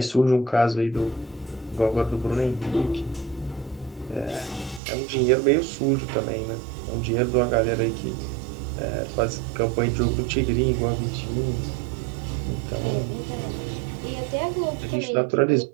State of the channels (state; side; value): drops out; left; at 4.8 s